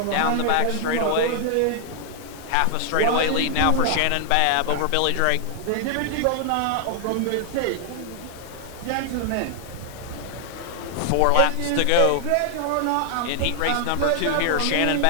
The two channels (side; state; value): both; different; correlation 0.00